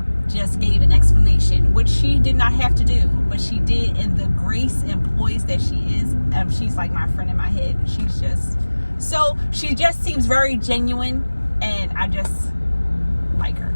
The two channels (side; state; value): both; inverted; correlation -1.00